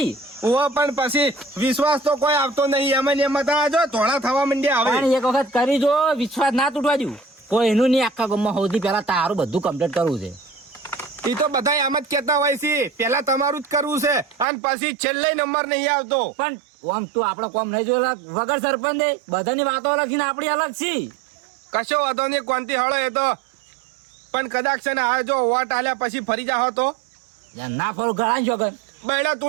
ઓ પણ પછી વિશ્વાસ તો કોઈ આવતો નહીં એમ ને એમાં તો જો ધોળા થવા માંડ્યા પણ હવે એક વખત કરી જો વિશ્વાસ ના તૂટવા દઉં કોઈ એનું નહીં આખા ગામમાં સૌથી પહેલા તારું બધું કમ્પ્લીટ કરવું છે. એ તો બધા એમ જ કેતા હોય છે પેલા તમારું જ કરવું છે અને પછી છેલ્લે નંબર નહીં આવતો. પણ આમ તું આપડે કોમ નહીં જોયેલા વગર સરપંચ દે બધાની વાતો અલગ છે ને આપડી અલગ છે. કશો વાંધો નહીં કોનથી હળો એ તો પણ કદાચ છે ને આ જો વોટ આલ્યા પછી ફરી જાઓ તો યાર ના ફરો ગળા જોગન. બૈડા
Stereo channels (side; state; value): left; drops out; at 14.5 s